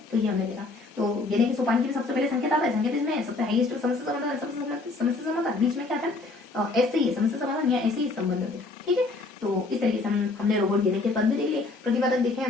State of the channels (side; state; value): right; quieter; 3.5 dB